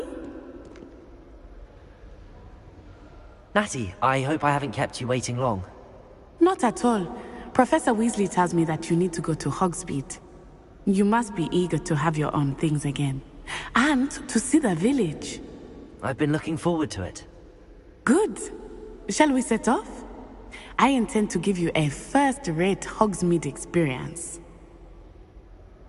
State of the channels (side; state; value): both; identical; correlation 1.00